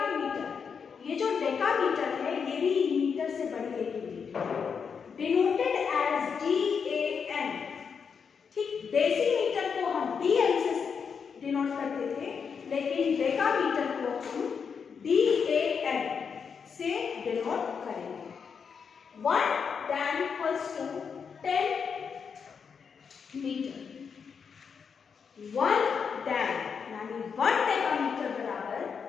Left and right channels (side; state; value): right; quieter; 6.3 dB